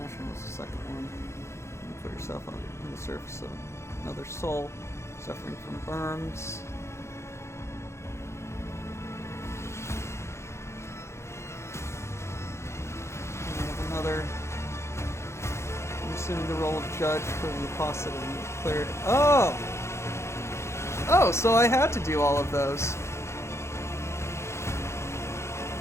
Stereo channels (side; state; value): right; late; 0.13 ms